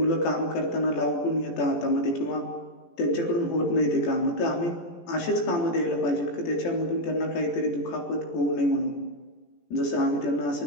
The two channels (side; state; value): right; late; 17 ms